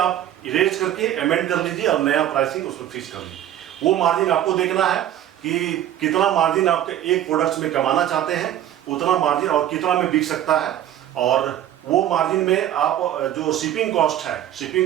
इरेज करके अमेंड कर लीजिए और नया प्राइसिंग उसमें फिक्स कर लीजिए। वो मार्जिन आपको देखना है कि कितना मार्जिन आपके एक प्रोडक्ट्स में कमाना चाहते हैं, उतना मार्जिन और कितना में बिक सकता है। और वो मार्जिन में आप जो शिपिंग कॉस्ट है,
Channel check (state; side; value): quieter; left; 11.7 dB